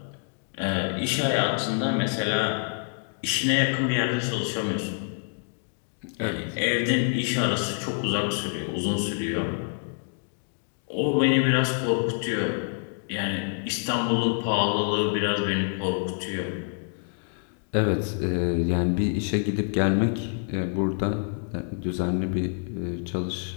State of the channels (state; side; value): silent; right; 59 dB below the other